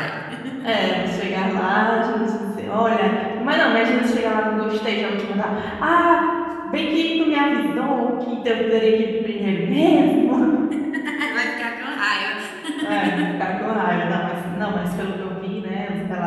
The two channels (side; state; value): both; identical; correlation 1.00